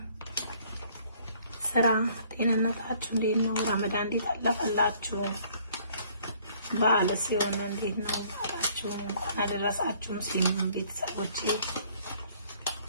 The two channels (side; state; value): both; inverted; correlation -0.60